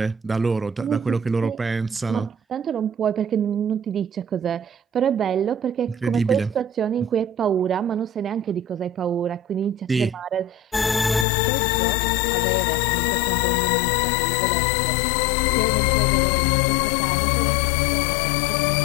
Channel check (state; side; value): drops out; right; at 11.2 s